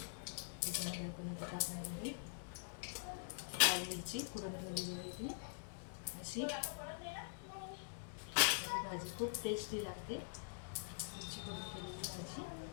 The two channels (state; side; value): silent; right; digital silence